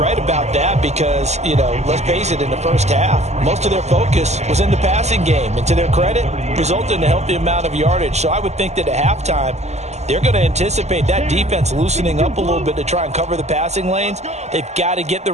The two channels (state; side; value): late; left; 0.33 ms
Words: about that because, let's face it, in the first half, most of their focus was in the passing game, and to their credit, resulted in a healthy amount of yardage. So I would think that at halftime, they're going to anticipate that defense loosening up a little bit to try and cover the passing lanes. They've got to get the